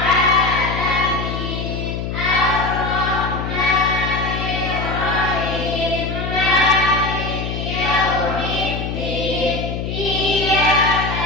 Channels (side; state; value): left; noise; hum, 4 dB below the sound